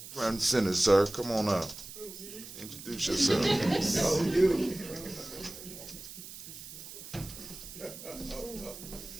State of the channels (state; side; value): noise; right; hiss, 13 dB below the sound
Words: center, sir. Come on up. Introduce yourself. Oh, you. Oh,